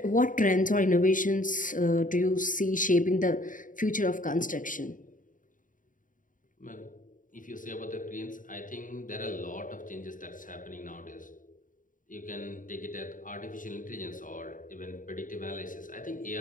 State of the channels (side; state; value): right; late; 0.38 ms